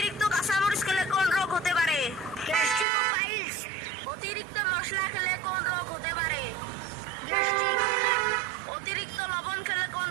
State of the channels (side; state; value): left; drops out; at 2.9 s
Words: কাঁচামরিচ খেলে কোন রোগ হতে পারে? গ্যাস্ট্রিক ও পাইলস। অতিরিক্ত মশলা খেলে কোন রোগ হতে পারে? গ্যাস্ট্রিক। অতিরিক্ত লবণ খেলে কোন